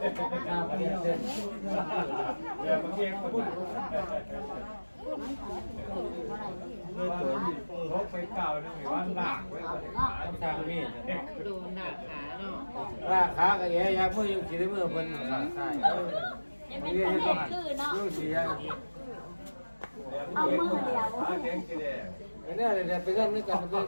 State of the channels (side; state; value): both; inverted; correlation -1.00